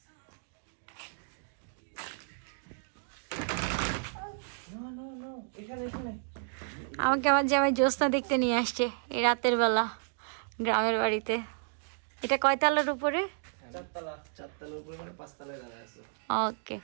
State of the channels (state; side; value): silent; left; digital silence